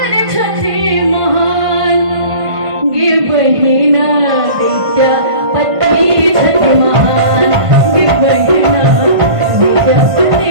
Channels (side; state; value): left; late; 1.5 ms